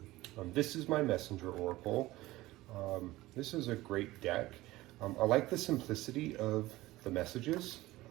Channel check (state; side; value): quieter; left; 18.0 dB